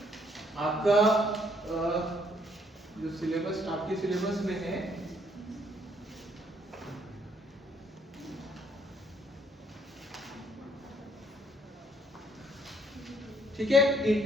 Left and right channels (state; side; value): normal; both; correlation 0.67